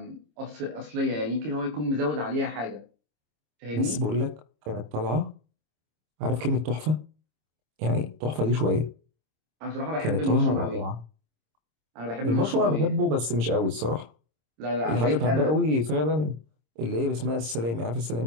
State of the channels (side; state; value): left; late; 26 ms